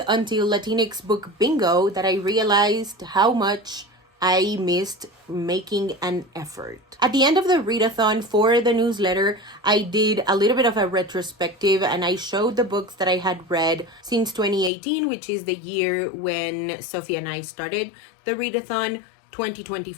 until Latinx Book Bingo that I realized how much I missed making an effort. At the end of the readathon for the newsletter, I did a little bit of a retrospective and I showed the books that I had read since 2018, which is the year when Sophie and I started the readathon.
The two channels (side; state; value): right; drops out; at 14.7 s